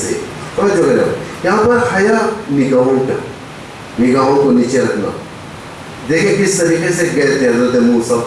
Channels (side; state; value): both; identical; correlation 1.00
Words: جو ہے یہاں پر حیا، نگاہوں کا، نگاہوں کو نیچے رکھنا. دیکھیں کس طریقے سے گئے تھے حضرت موسیٰ،